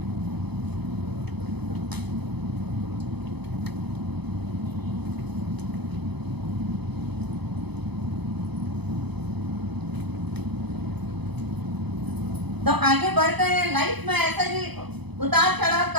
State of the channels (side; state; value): left; late; 0.99 ms